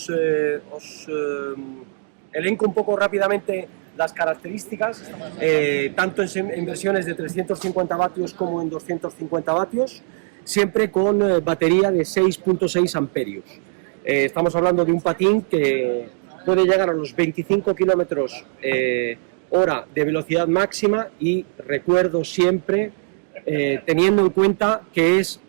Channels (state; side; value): silent; left; digital silence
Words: elenco un poco rápidamente las características, tanto en versiones de 350 vatios como en 250 vatios, siempre con batería de 6.6 amperios. Estamos hablando de un patín que puede llegar a los 25 kilómetros hora de velocidad máxima, y recuerdo siempre, teniendo en cuenta que es